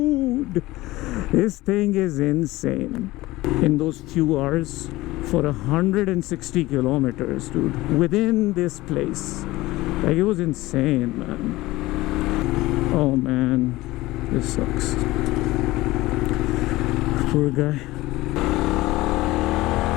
this thing is insane. In those few hours, for 160 kilometers, dude, within this place, like, it was insane, man. Oh man, this sucks. Poor guy.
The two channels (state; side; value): quieter; right; 18.7 dB